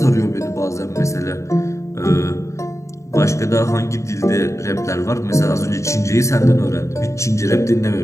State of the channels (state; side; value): late; right; 0.14 ms